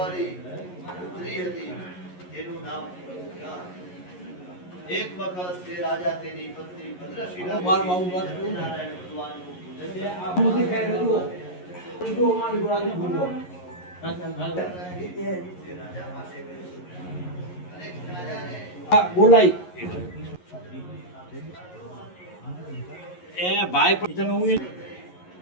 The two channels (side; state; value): right; late; 11 ms